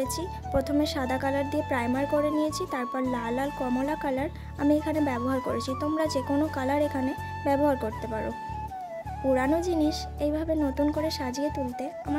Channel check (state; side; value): identical; both; correlation 1.00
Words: প্রথমে সাদা কালার দিয়ে প্রাইমার করে নিয়েছি, তারপর লাল আর কমলা কালার আমি এখানে ব্যবহার করেছি। তোমরা যে কোনো কালার এখানে ব্যবহার করতে পারো। পুরানো জিনিস এইভাবে নতুন করে সাজিয়ে তুলতে